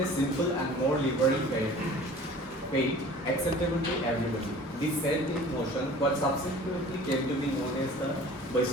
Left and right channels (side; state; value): both; normal; correlation 0.45